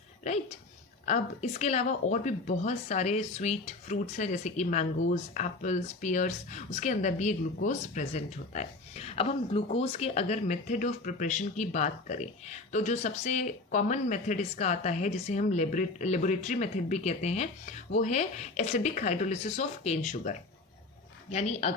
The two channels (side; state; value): right; quieter; 3.3 dB